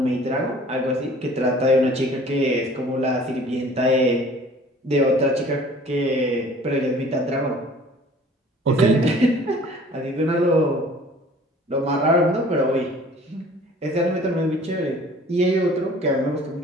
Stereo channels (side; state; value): both; normal; correlation 0.50